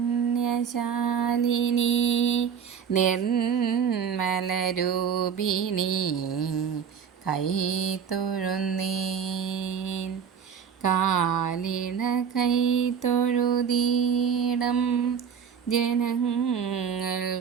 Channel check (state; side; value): quieter; left; 7.3 dB